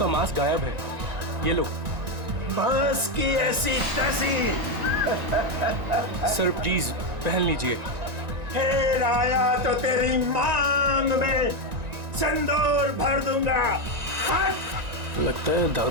mask गायब है, ये लो। बस की ऐसी तैसी। सर प्लीज पहन लीजिए। फिर आया तो तेरी मांग में सिंदूर भर दूंगा। हट! लगता है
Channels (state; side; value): late; left; 1.9 ms